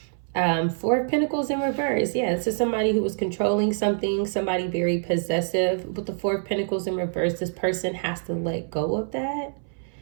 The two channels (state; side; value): silent; left; 59 dB below the other